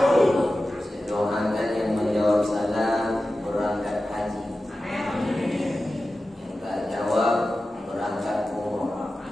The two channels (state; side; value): normal; both; correlation 0.94